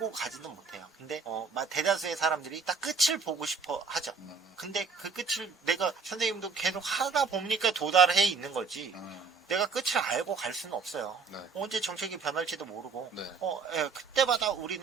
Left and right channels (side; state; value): left; quieter; 5.1 dB